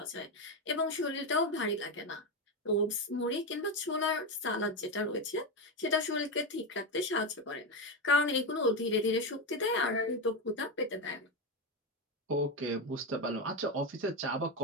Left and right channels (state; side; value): normal; both; correlation 0.12